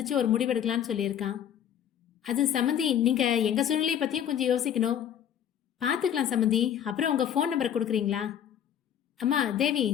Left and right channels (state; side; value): quieter; right; 9.5 dB